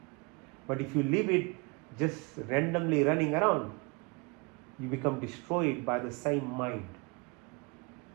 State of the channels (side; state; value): left; quieter; 29.7 dB